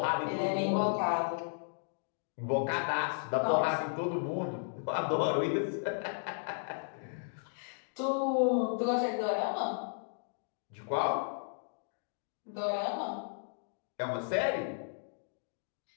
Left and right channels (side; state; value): right; silent; digital silence